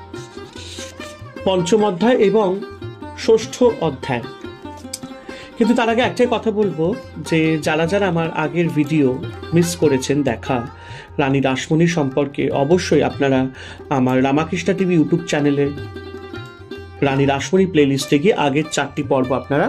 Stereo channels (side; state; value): both; identical; correlation 1.00